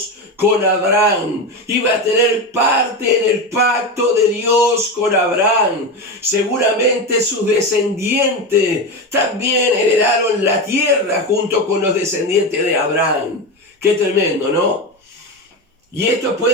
con Abraham. Iba a tener parte en el pacto de Dios con Abraham. Seguramente sus descendientes también heredaron la tierra junto con los descendientes de Abraham. Qué tremendo, ¿no? Y esto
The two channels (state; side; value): normal; both; correlation 0.18